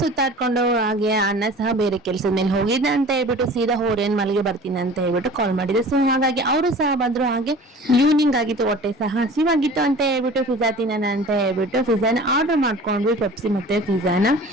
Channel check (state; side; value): normal; both; correlation 0.42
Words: ಹಾಗೆ ಅಣ್ಣ ಸಹ ಬೇರೆ ಕೆಲ್ಸದ ಮೇಲೆ ಹೋಗಿದ್ದ ಅಂತ ಹೇಳ್ಬಿಟ್ಟು ಸೀದಾ ಓರೇನ್ ಮಲ್ಗೆ ಬರ್ತೀನಿ ಅಂತ ಹೇಳ್ಬಿಟ್ಟು ಕಾಲ್ ಮಾಡಿದ್ರು. ಸೊ ಹಾಗಾಗಿ ಅವರು ಸಹ ಬಂದ್ರು. ಹಾಗೆ ಈವ್ನಿಂಗ್ ಆಗಿತ್ತು, ಹೊಟ್ಟೆ ಸಹ ಹಸಿವಾಗಿತ್ತು ಅಂತ ಹೇಳ್ಬಿಟ್ಟು ಪಿಜ್ಜಾ ತಿನ್ನೋಣ ಅಂತ ಹೇಳ್ಬಿಟ್ಟು ಪಿಜ್ಜಾನ ಆರ್ಡರ್ ಮಾಡ್ಕೊಂಡ್ವಿ. ಪೆಪ್ಸಿ ಮತ್ತೆ ಪಿಜ್ಜಾನ,